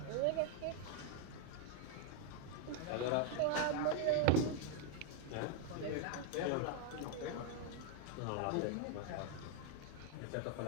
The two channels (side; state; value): both; different; correlation 0.00